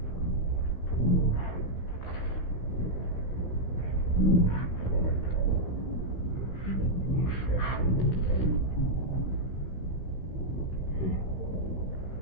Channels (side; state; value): right; late; 16 ms